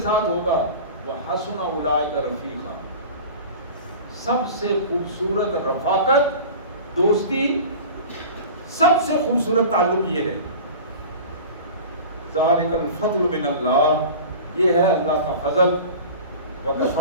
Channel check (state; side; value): inverted; both; correlation -0.37